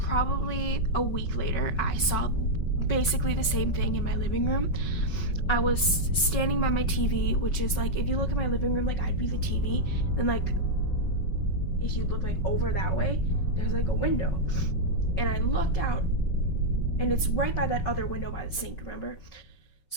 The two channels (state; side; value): late; right; 5.4 ms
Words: a week later. I saw basically the same thing in my living room. I was standing by my TV, which is like, if you look at my living room, like I'd be the TV, then like if you look like over that way, there's like a window, and I looked out, and it's right by that other window by the sink, remember?